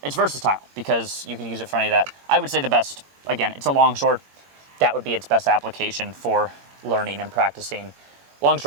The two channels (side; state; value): left; late; 21 ms